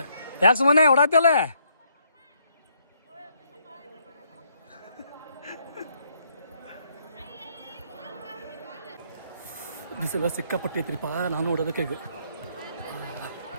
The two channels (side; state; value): both; inverted; correlation -0.72